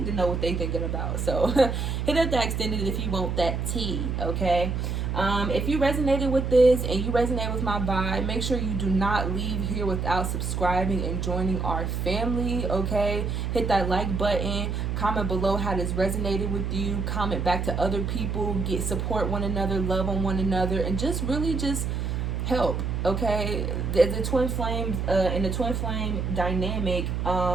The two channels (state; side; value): noise; right; hum, 1 dB below the sound